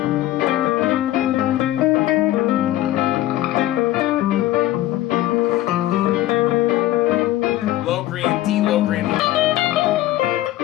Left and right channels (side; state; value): right; quieter; 15.1 dB